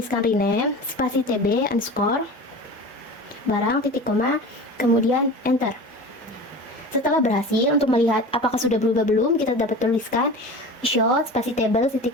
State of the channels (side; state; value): both; normal; correlation 0.34